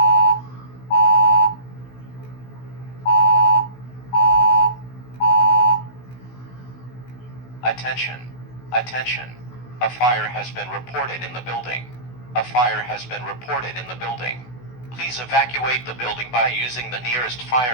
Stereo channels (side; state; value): right; late; 16 ms